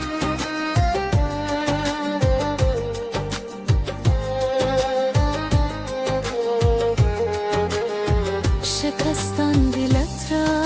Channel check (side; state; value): both; identical; correlation 1.00